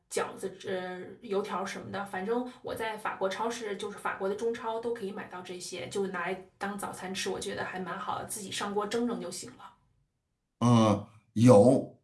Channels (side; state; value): both; identical; correlation 1.00